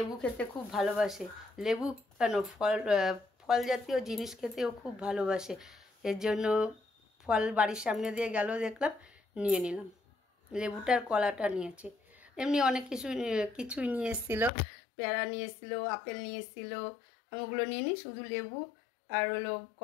খেতে খুব ভালোবাসে, লেবু কেন ফল জাতীয় জিনিস খেতেও খুব ভালোবাসে, এর জন্য ফল বাড়ির সামনে দিয়ে গেল, দেখলাম, নিয়ে নিলাম। লেবুটার কলাটা নিয়েছি, এমনি অনেক কিছুই নিয়ে এসেছিলো, পেয়ারা নিয়ে এসেছিলো, আপেল নিয়ে এসেছিলো, আমি ওগুলো নিয়ে নিই, শুধু লেবু আর হলো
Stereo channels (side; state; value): right; drops out; at 14.5 s